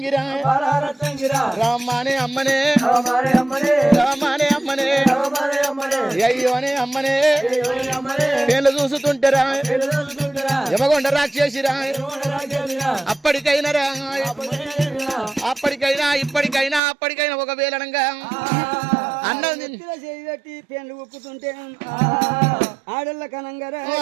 రామానే అమ్మనే రామానే అమ్మనే అయ్యోనే అమ్మనే పేర్లు చూస్తుంటారా యమగొండ రాక్షసిరా అప్పటికైనా రా అప్పటికైనా ఇప్పటికైనా అప్పటికైనా ఒకవేళనంగా అన్నది పెట్టి పేర్లు ఉప్పుతుంటే ఆడళ్ళ కనంగరా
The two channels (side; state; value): left; drops out; at 16.8 s